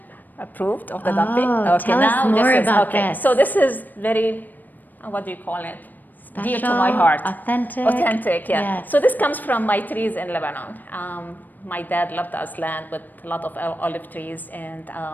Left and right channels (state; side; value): late; right; 0.087 ms